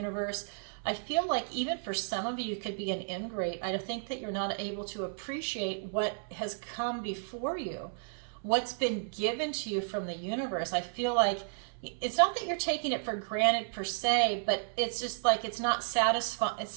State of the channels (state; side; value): silent; left; 56 dB below the other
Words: I feel like even for some of you, it could be an ingrate. I think that you're not able to appreciate what has come before you, what's been given to you from the universe. I feel like it's not that you're taking it for granted per se, but it's just like it's not satisfying